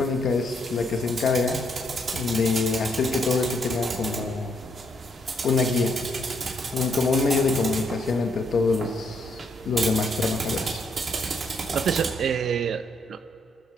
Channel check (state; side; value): normal; both; correlation 0.73